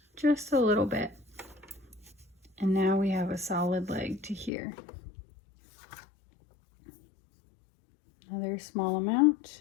just a little bit. And now we have a solid leg to here. Another small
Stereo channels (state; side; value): drops out; right; at 4.5 s